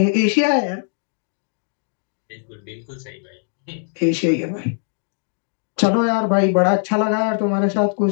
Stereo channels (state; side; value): silent; right; digital silence